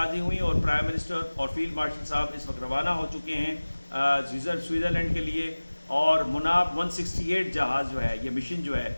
ہوئیں, اور پرائم منسٹر اور فیلڈ مارشل صاحب اس وقت روانہ ہو چکے ہیں سوئٹزرلینڈ کے لیے, اور مناب 168 جہاز جو ہے, یہ مشن جو ہے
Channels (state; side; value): inverted; both; correlation -1.00